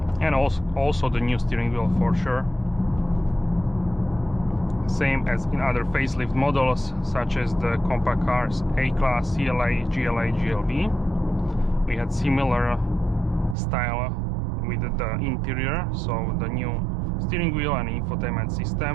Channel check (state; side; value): drops out; left; at 13.6 s